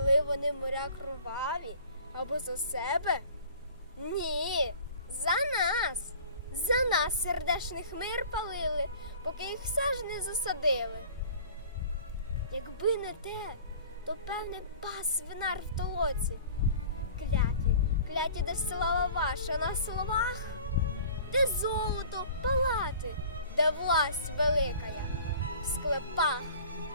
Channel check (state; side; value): inverted; both; correlation -0.46